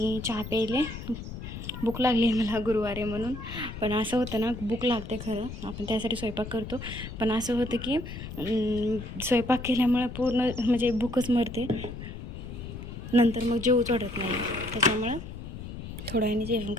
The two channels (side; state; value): left; noise; rumble, 9 dB below the sound